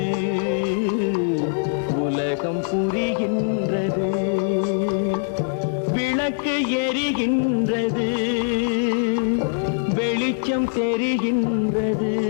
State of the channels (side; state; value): right; silent; 55 dB below the other